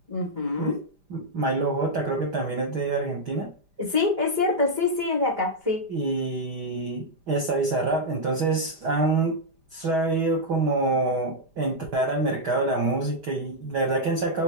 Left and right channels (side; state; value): left; late; 5.0 ms